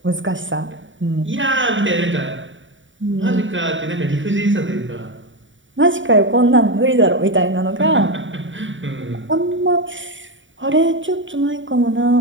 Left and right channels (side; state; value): left; late; 0.56 ms